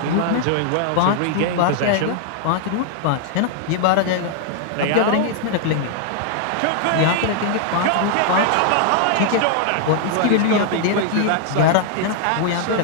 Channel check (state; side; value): different; both; correlation 0.00